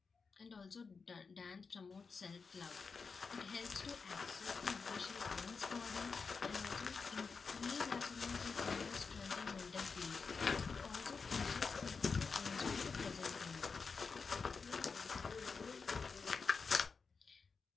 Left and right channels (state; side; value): quieter; right; 5.0 dB